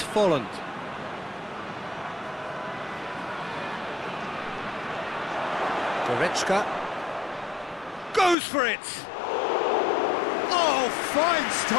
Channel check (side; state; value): right; drops out; at 8.3 s